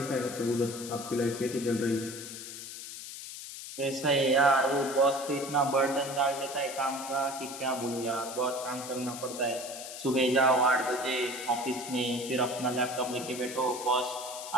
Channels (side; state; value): left; noise; hiss, 10 dB below the sound